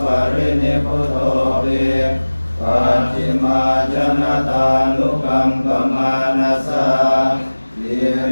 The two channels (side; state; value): both; inverted; correlation -1.00